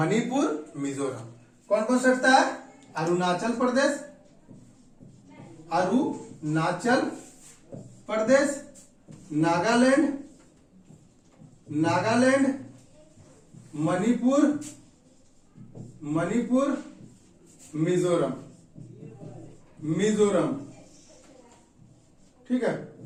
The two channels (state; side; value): identical; both; correlation 1.00